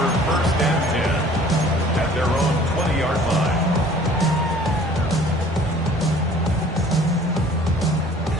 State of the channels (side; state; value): both; normal; correlation 0.52